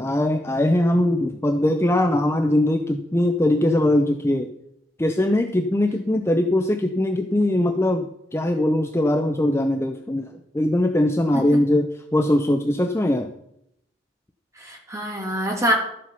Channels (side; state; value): both; normal; correlation 0.84